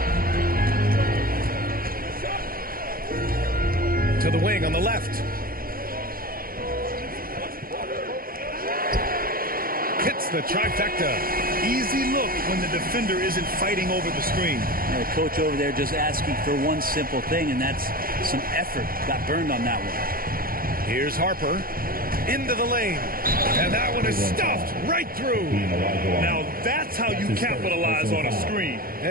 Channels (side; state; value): left; late; 0.42 ms